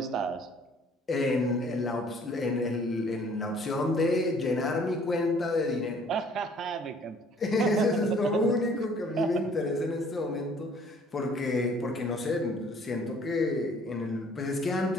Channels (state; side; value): normal; both; correlation 0.57